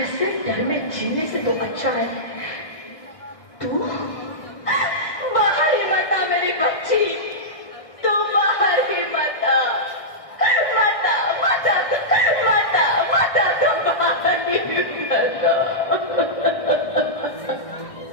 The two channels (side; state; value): right; late; 1.6 ms